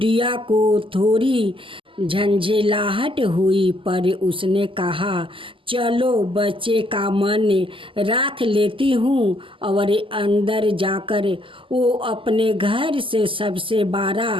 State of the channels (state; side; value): late; left; 0.25 ms